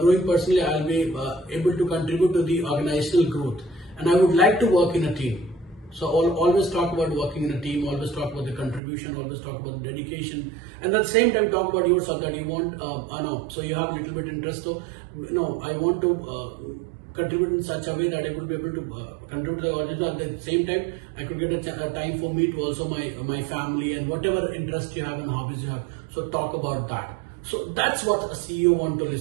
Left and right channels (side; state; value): left; drops out; at 8.8 s